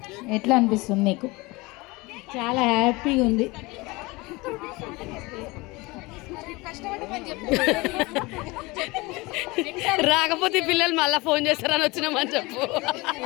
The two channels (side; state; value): right; quieter; 23.5 dB